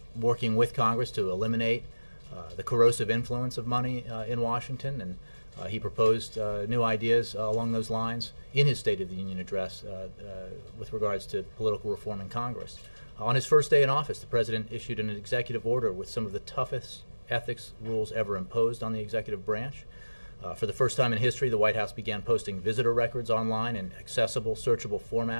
working with Congress to eliminate the corrosive influence of money in Washington, and he proposed new ideas along those lines in his State of the Union address with regards to political reform in Congress. On his first day in office, the President issued an executive order with some of the toughest ethics rules ever imposed on the executive branch. For the first time in history, the White House began posting visitor records online in accessible, searchable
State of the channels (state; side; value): inverted; both; correlation -1.00